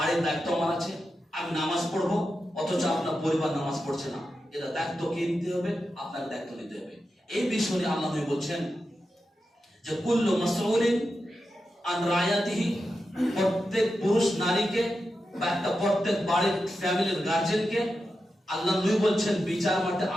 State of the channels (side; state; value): both; normal; correlation 0.89